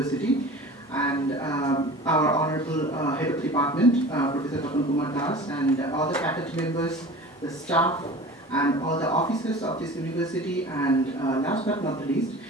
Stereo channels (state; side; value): normal; both; correlation 0.39